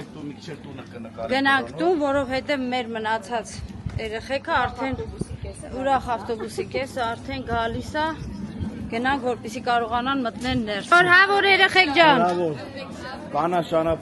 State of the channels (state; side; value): identical; both; correlation 1.00